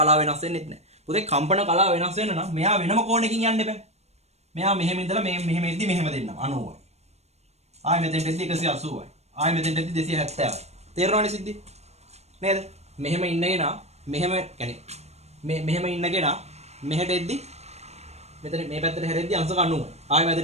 වෙනස් වෙන්නේ නැහැ. පුතේ කම්පන කලාව වෙනස් වෙන්න නම් මෙයා වෙනම කෝණයකින් යන්න එපා. මෙයා මෙහෙම ඉඳලා මෙහෙම එද්දි මෙහෙම දෙන්නම් 90යි. ආයෙ මෙතෙන්ට එද්දි 180යි. ආයෙ මෙතෙන්ට එද්දි 270යි. තේරෙනවනේ සිද්ධි? නේද? මෙහෙම ඉන්නගෙන මෙහෙම يعني මෙහෙම ඉන්නගෙන මෙහෙට එද්දි මෙතන මේ පැත්තට හැරෙද්දි අංශක 90යි. ආයෙ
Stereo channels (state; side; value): late; left; 0.31 ms